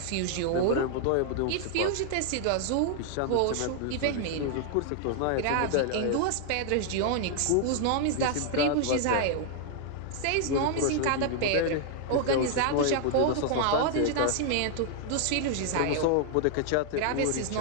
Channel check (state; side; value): different; both; correlation 0.00